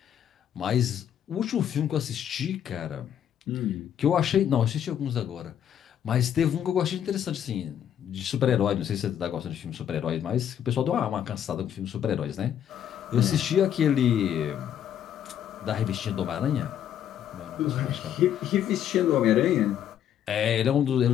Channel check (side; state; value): right; quieter; 9.8 dB